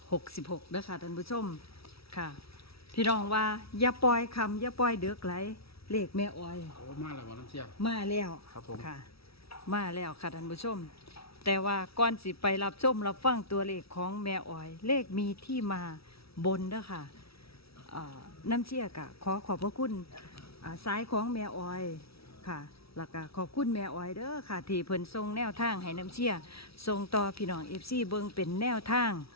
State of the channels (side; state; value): right; late; 0.76 ms